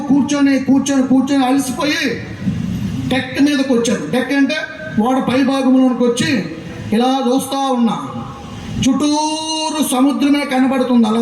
కూర్చొని అలసిపోయి డెక్ మీదకి వచ్చాను. డెక్ అంటే ఓడ పై భాగంలోనికి వచ్చి ఇలా చూస్తూ ఉన్నా. చుట్టూరు సముద్రమే కనబడుతుంది.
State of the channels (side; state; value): both; identical; correlation 1.00